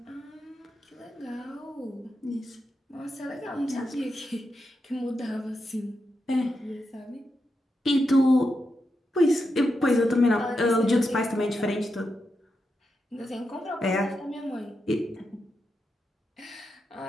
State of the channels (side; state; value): both; normal; correlation 0.86